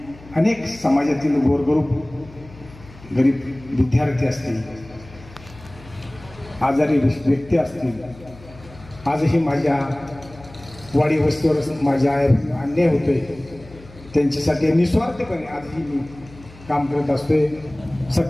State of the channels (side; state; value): left; noise; hum, 21 dB below the sound